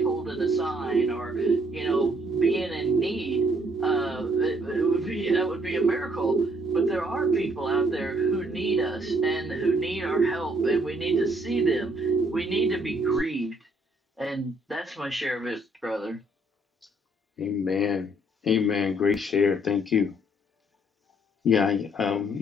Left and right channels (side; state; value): both; normal; correlation 0.66